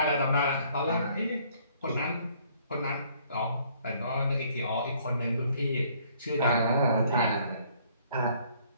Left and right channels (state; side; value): inverted; both; correlation -0.62